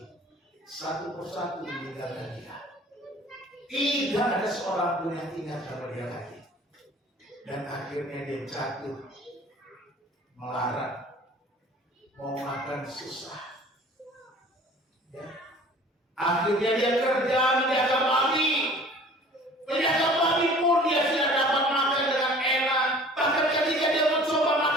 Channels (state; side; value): normal; both; correlation 0.47